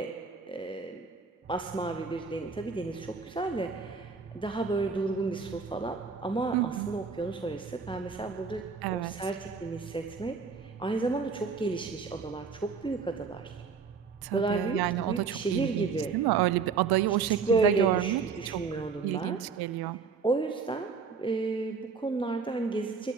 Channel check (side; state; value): left; quieter; 5.3 dB